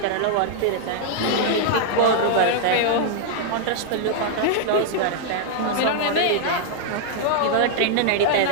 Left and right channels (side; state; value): both; different; correlation -0.01